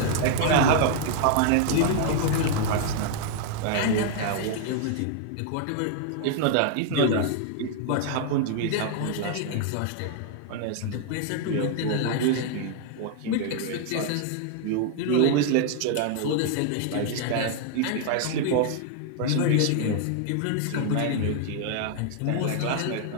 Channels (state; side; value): different; both; correlation 0.00